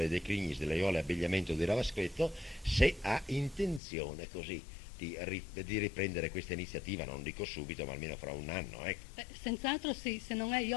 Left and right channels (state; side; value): drops out; right; at 3.8 s